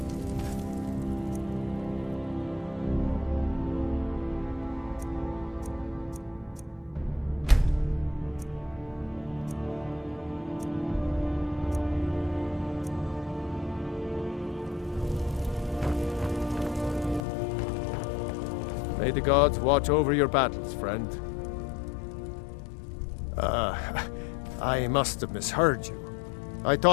May the gods watch over your battles, friend. I must have misheard you. I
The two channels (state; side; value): drops out; right; at 17.2 s